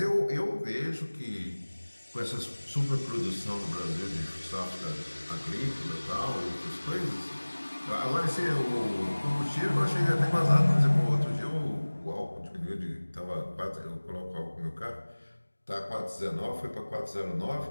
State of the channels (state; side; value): inverted; both; correlation -1.00